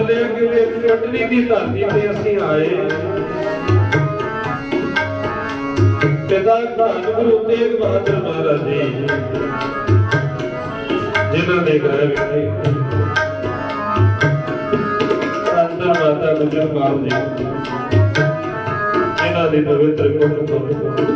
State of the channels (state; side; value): identical; both; correlation 1.00